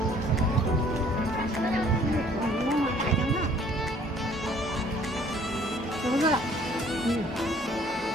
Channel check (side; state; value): both; normal; correlation 0.57